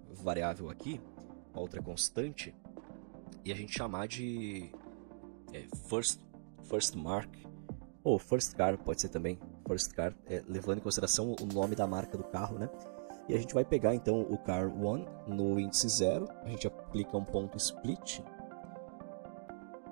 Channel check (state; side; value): silent; left; digital silence